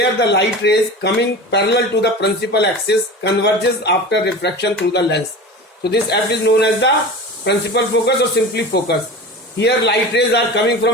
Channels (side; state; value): both; normal; correlation 0.32